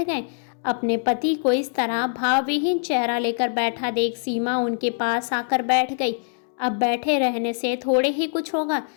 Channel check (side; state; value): right; silent; digital silence